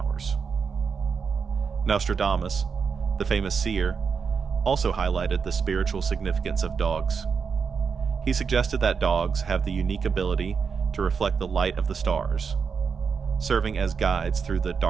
Nostradamus, the famous seer, also highlighted the spiritual significance of dogs. He suggested that dogs have the unique ability to reflect the light of the stars, serving as guides through the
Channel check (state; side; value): quieter; left; 5.9 dB